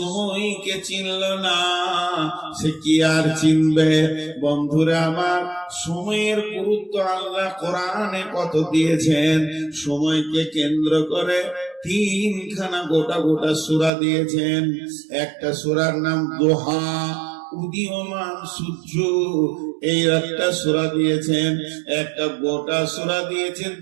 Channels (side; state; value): left; drops out; at 13.9 s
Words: চিনল না সে কি আর চিনবে? বন্ধুরা আমার, সময়ের গুরুত্ব আল্লাহ কোরআনে কত দিয়েছেন। সময়কে কেন্দ্র করে 3খানা গোটা গোটা সূরা দিয়েছেন। একটা সূরার নাম দোহা, উদীয়মান সূর্য, এই একটা সূরা দিয়েছেন। একটা গোটা সূরা দিয়েছেন